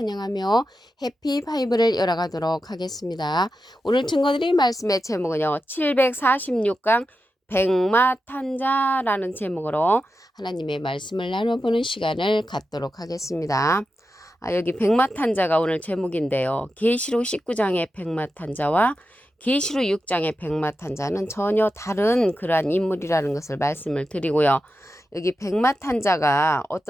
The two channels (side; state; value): both; normal; correlation 0.90